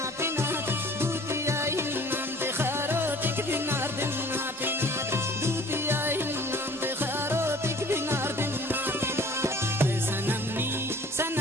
पिना दूतिया ही नाम ते खारो टिक बिनार दिन ना पिना दूतिया ही नाम ते खारो टिक बिनार दिन ना पिना है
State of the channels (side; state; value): both; normal; correlation 0.50